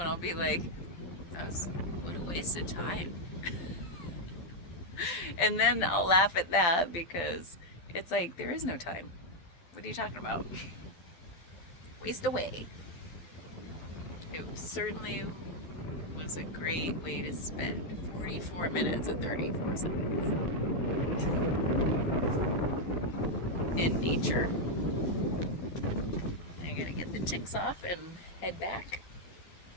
I'll be like, what a waste of time. And then I'll laugh at that because it's like, there is no time. What are you talking about? Waste away. It certainly was a great way to spend 44 minutes and 34 seconds in nature. I'm gonna get the chicks off and head back.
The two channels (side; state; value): right; late; 12 ms